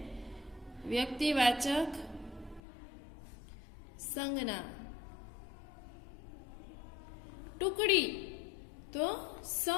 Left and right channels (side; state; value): right; drops out; at 2.6 s